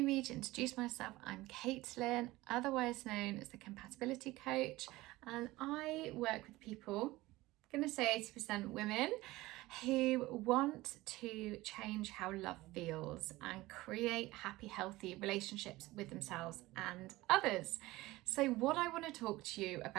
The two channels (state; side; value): quieter; left; 18.9 dB